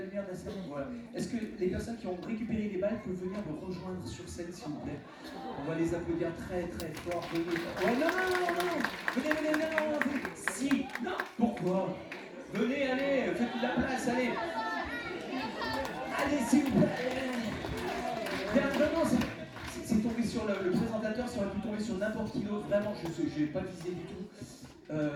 de la salle? Voilà. Est-ce que les personnes qui ont récupéré les balles peuvent venir me rejoindre sur scène, s'il vous plaît? On va les applaudir très très fort. Venez. Ouais, non. Venez, non. Si, non, pourquoi? Venez, allez, faites de la place, allez. Allez, s'il vous plaît. Bien, vraiment, c'est tombé sur le présentateur, ça aurait pu tomber sur n'importe qui d'autre. Vraiment, je n'ai pas visé du tout.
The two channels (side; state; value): both; identical; correlation 1.00